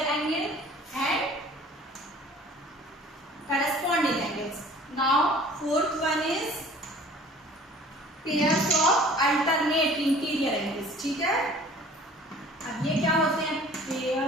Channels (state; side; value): normal; both; correlation 0.48